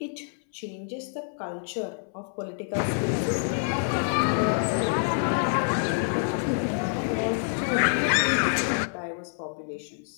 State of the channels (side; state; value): right; silent; 60 dB below the other